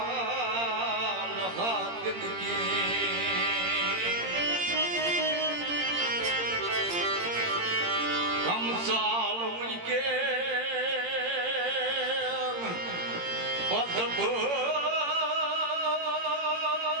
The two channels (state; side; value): late; left; 17 ms